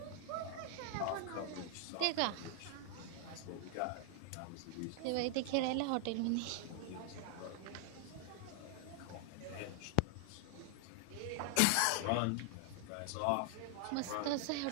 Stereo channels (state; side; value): different; both; correlation 0.00